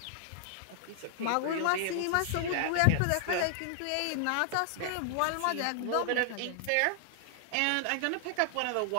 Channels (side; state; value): both; different; correlation -0.01